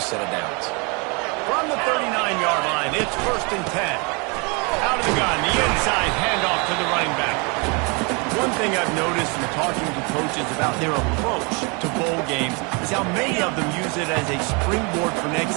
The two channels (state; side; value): quieter; left; 31.4 dB